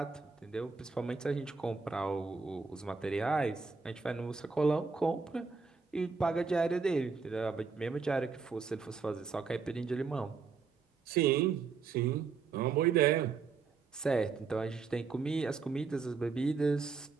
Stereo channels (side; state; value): left; quieter; 5.0 dB